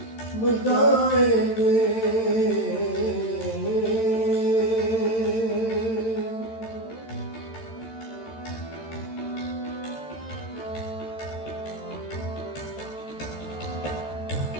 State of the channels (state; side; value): late; right; 13 ms